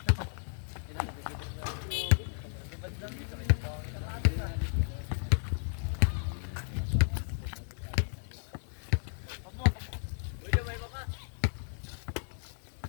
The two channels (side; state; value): right; silent; digital silence